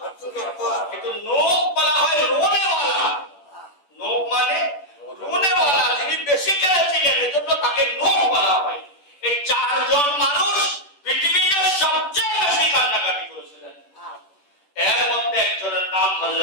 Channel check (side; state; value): right; late; 10 ms